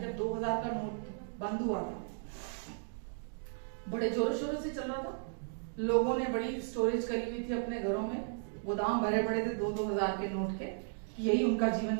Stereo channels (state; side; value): silent; left; digital silence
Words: जब 2000 का नोट बंद हुआ था, बड़े जोरों शोरों से चल रहा था, लोगों ने बड़ी स्टोरेज करी हुई थी अपने घरों में, गोदाम भरे पड़े थे 2-2 हजार के नोट के, यही उनका जीवन